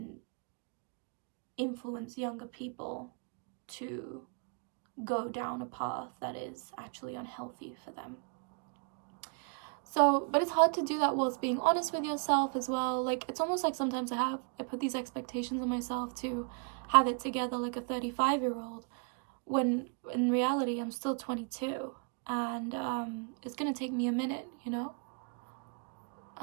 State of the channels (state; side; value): quieter; left; 39.9 dB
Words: influence younger people to go down a path that is actually unhealthy for them. So, but it's hard to do that whilst being honest with yourself as well. Like, it's almost like sometimes I put these expectations on myself to have it together like a 35-year-old, when in reality I'm still 22, and it's gonna take me a minute, you know.